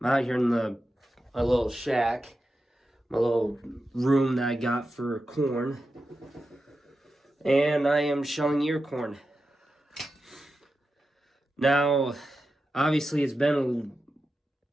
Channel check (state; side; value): normal; both; correlation 0.90